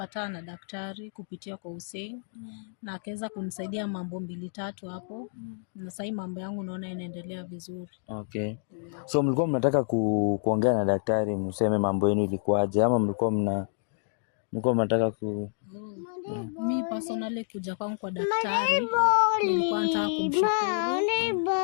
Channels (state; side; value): silent; right; digital silence